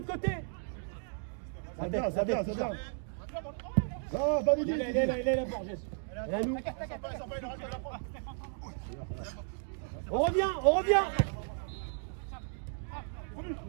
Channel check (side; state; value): left; silent; 55 dB below the other